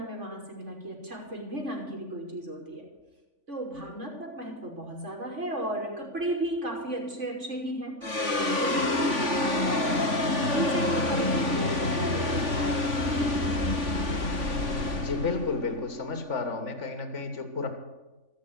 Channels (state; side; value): late; left; 3.5 ms